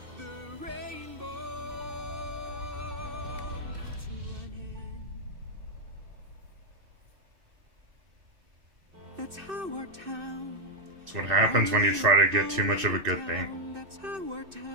the rainbow to an end. That's how our town. That's what happens when you try to get too much of a good thing. That's how our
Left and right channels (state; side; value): late; left; 2.6 ms